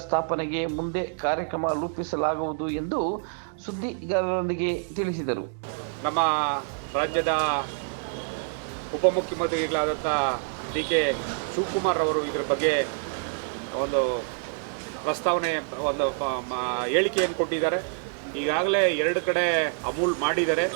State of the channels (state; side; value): silent; left; digital silence